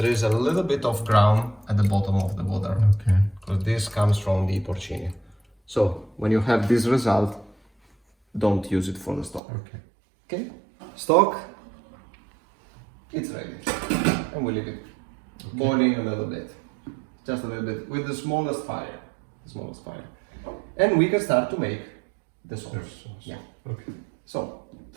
is a little bit of ground at the bottom of the water. Okay. Because this comes from the porcini. So when you have this result, don't use it for the stock. Okay. Okay? Stock, it's ready. And we leave it boiling a little bit. Just a little bit, with the smallest fire. And we can start to make the sauce. Yeah. Okay. So,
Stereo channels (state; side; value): drops out; left; at 9.4 s